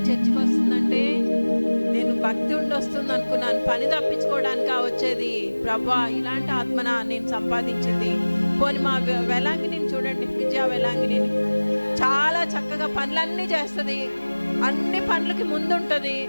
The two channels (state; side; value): inverted; both; correlation -1.00